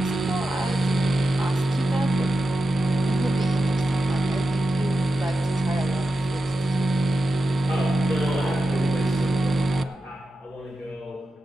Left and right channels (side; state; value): both; normal; correlation 0.90